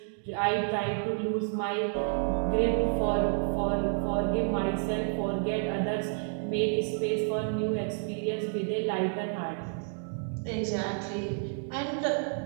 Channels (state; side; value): silent; left; 58 dB below the other